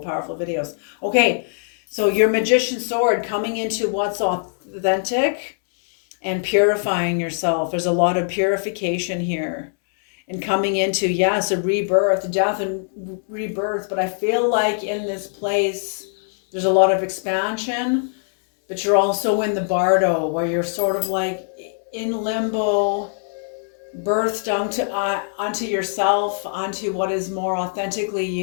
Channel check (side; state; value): right; silent; 64 dB below the other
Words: videos. Okay, so your magician sword, coming into what's authentic and purifying yourself. There's a lot of purification here, and coming into, yes, a rebirth, death and rebirth. But I feel like in this place there's a lot of expansion, but you're also in the bardo, where you're sort of like in limbo, birthed onto yourself, onto what is more authentically